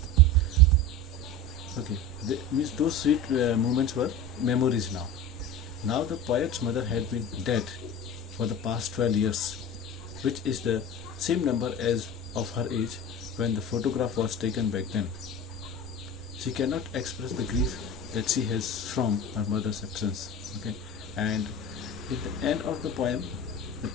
Okay, means those sweet moments were memories now. Now the poet's mother had been dead for the past 12 years, which is the same number as of her age when the photograph was taken back then. She cannot express the grief that she has from her mother's absence. Okay, and at the end of the poem, the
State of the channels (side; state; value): both; normal; correlation 0.31